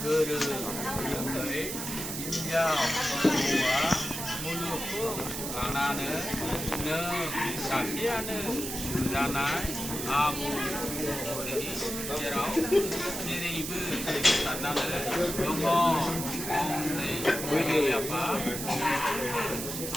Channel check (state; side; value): noise; right; hiss, 5 dB below the sound